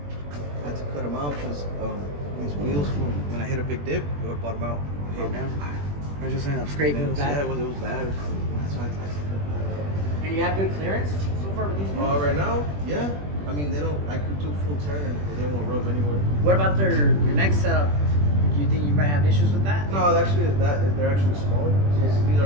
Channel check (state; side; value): late; left; 21 ms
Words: I had to cut them out because these wheels, when I hit a big dip, it would bottom out. Oh, damn. I was just saying, I'm scraping Yeah, it back. it was bad. That's why I had to cut that out. And you have good clearance so far with these wheels? Right now, yeah. I mean, they don't. I could do a full turn, but they won't rub anywhere. What about your next setup? Do you think you might have issues with that? No, actually, they're actually smaller. These